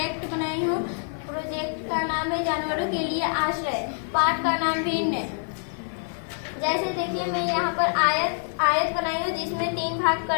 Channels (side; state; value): right; silent; 56 dB below the other